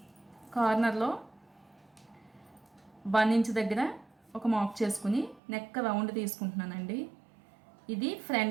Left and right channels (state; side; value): drops out; left; at 5.4 s